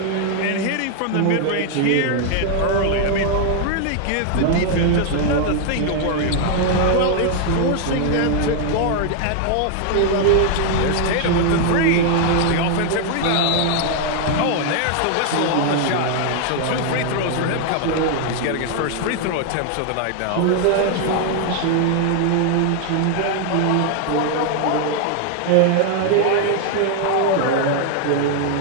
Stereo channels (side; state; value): both; different; correlation 0.00